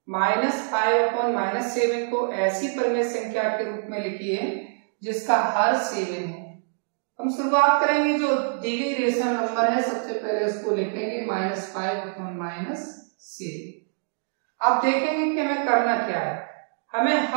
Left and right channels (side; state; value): left; silent; digital silence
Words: -5/-7 को ऐसी परिमेय संख्या के रूप में लिखिए जिसका हर 7 है। हम शुरुआत करेंगे, जो दी गई रेशनल नंबर है सबसे पहले उसको लिखेंगे -5/7। अब देखेंगे कि हमें करना क्या है। हमें